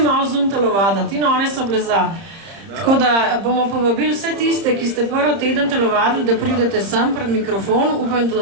malo zunaj telovaditi in one so bile za. Tako da bomo povabili vse tiste, ki ste prvi teden telovadili, da pridete sem pred mikrofon, upam,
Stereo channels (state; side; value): late; left; 30 ms